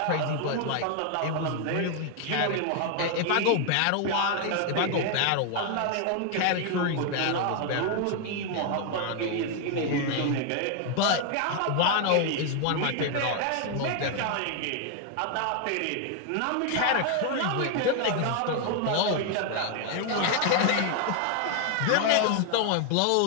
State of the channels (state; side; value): different; both; correlation 0.01